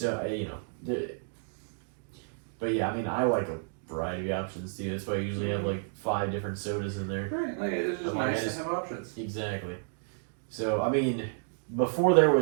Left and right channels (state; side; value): silent; left; digital silence